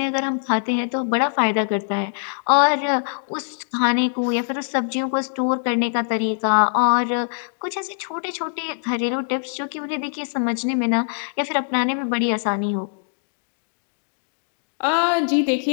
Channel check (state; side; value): silent; right; digital silence